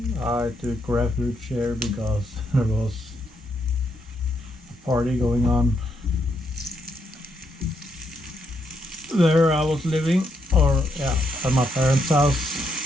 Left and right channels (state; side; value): normal; both; correlation 0.77